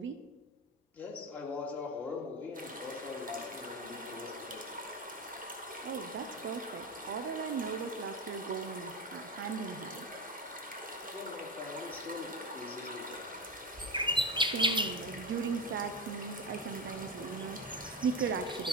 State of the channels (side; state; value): both; normal; correlation 0.19